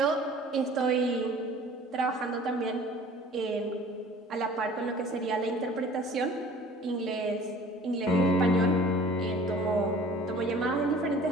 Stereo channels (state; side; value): normal; both; correlation 0.47